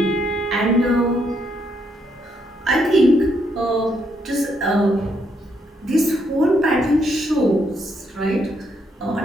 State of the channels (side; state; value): both; normal; correlation 0.75